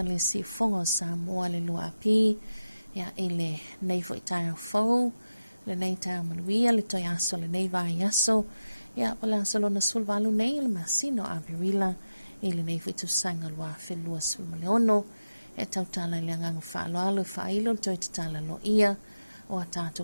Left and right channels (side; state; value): both; inverted; correlation -0.95